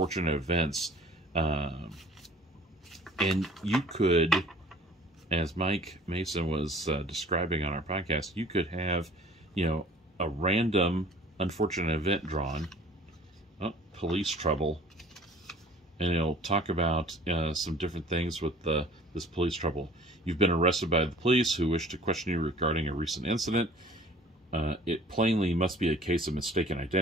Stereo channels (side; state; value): both; normal; correlation 0.50